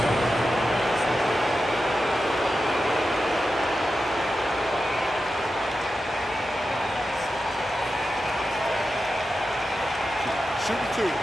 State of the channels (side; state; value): both; normal; correlation 0.91